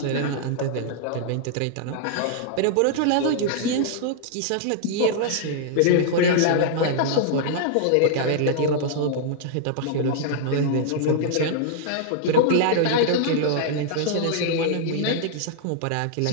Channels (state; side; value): different; both; correlation -0.01